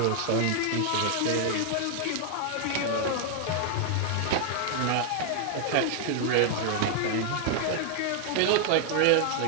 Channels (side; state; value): both; different; correlation 0.00